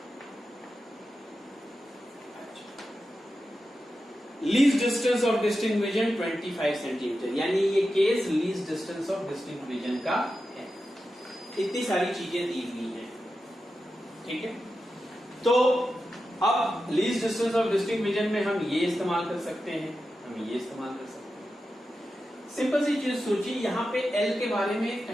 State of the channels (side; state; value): both; normal; correlation 0.91